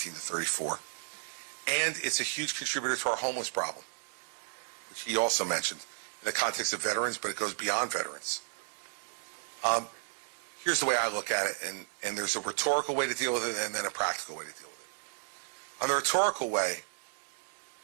34. And it's a huge contributor to our homeless problem, which he also mentioned in the context of veterans, but it goes beyond veterans. Here's the way I look at it, and there's a rhetorical way to deal with it and then a practical way to deal with it. On the rhetorical way,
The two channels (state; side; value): silent; left; 56 dB below the other